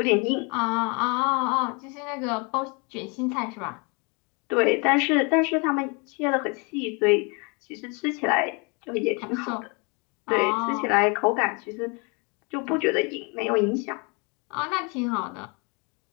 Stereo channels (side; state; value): right; quieter; 31.9 dB